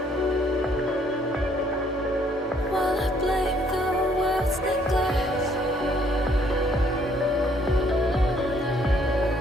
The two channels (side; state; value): both; normal; correlation 0.65